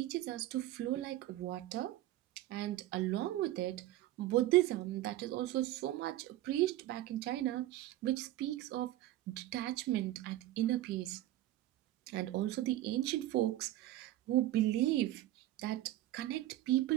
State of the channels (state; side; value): quieter; left; 15.0 dB